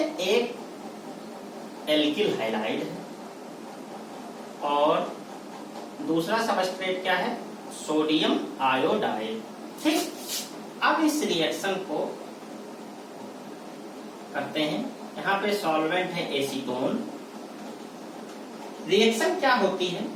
एक एल्किल हैलाइड है और दूसरा सबस्ट्रेट क्या है? सोडियम आयोडाइड, ठीक। अब इस रिएक्शन को करते हैं। यहाँ पे सॉल्वेंट है एसीटोन रिएक्शन क्या होती है,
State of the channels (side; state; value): both; identical; correlation 1.00